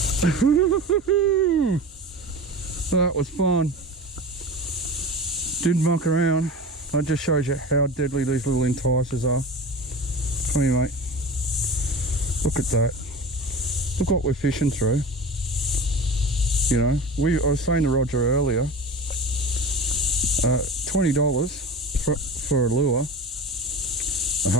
That was fun. Didn't muck around. That just shows you how deadly these little enticers are. Come here, mate. Look at that. Look what we're fishing through. You know, I was saying to Roger earlier, $20 for a lure, a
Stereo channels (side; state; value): both; normal; correlation 0.33